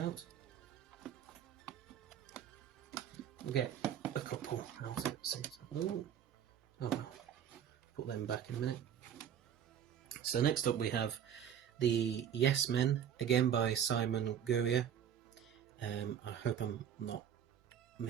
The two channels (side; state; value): left; quieter; 9.1 dB